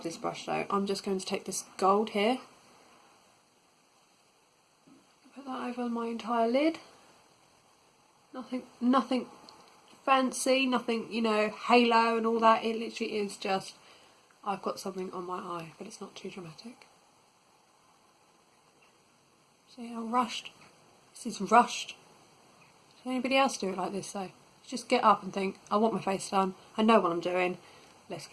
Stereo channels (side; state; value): both; identical; correlation 1.00